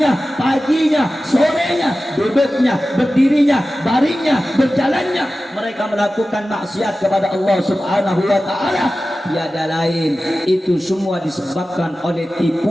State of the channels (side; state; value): both; normal; correlation 0.95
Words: paginya, sorenya, duduknya, berdirinya, baringnya, berjalannya, mereka melakukan maksiat kepada Allah Subhanahu wa taala. tiada lain, itu semua disebabkan oleh